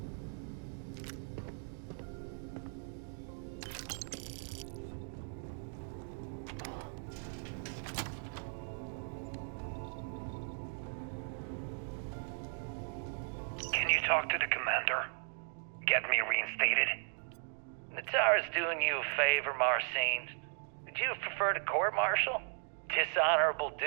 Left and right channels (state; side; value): silent; left; 53 dB below the other